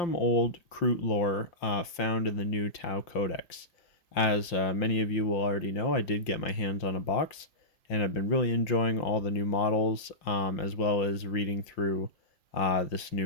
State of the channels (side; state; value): right; late; 5.8 ms